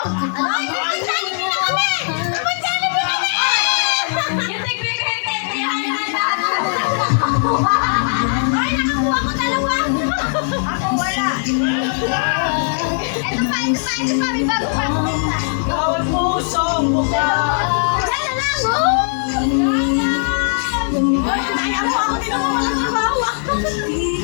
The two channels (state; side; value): silent; right; digital silence